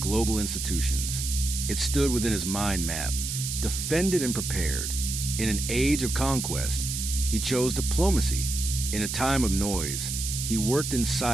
institutions. It stood within his mind map, defended and prepared. In an age of conquest, he chose diplomacy. In a time of noise, he worked in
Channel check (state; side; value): noise; right; hiss, 4 dB below the sound